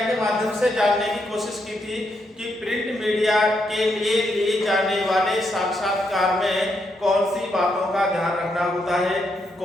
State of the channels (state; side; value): normal; both; correlation 0.79